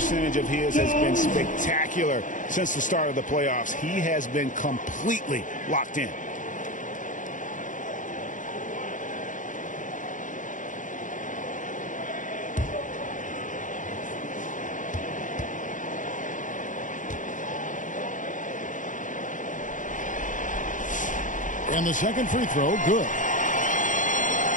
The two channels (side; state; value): right; late; 0.37 ms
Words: of his has been spectacular since the start of the playoffs. He has been completely locked in. And the second free throw, good.